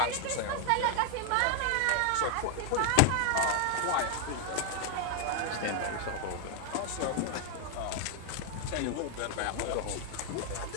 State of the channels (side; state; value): both; different; correlation 0.00